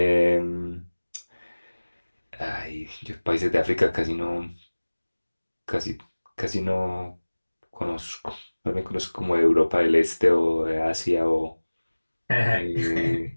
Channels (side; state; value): both; inverted; correlation -1.00